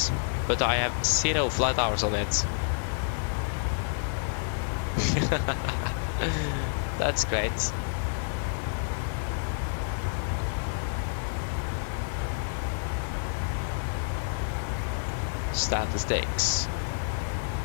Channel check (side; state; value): right; silent; digital silence